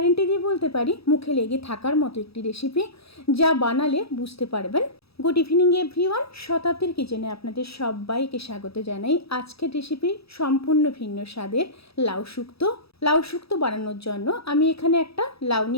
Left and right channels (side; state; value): right; late; 0.77 ms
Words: দিয়ে বলতে পারি মুখে লেগে থাকার মতো একটি রেসিপি, যা বানালে বুঝতে পারবেন। গুড ইভিনিং এভরিওয়ান, শতাব্দীর কিচেনে আপনাদের সবাইকে স্বাগত জানাই। আজকের রেসিপি সম্পূর্ণ ভিন্ন স্বাদের লাউ শুক্তো বানানোর জন্য আমি এখানে একটা লাউ